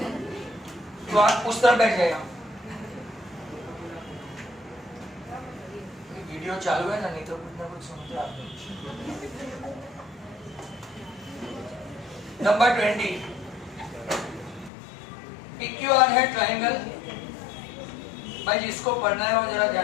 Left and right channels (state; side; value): drops out; right; at 14.7 s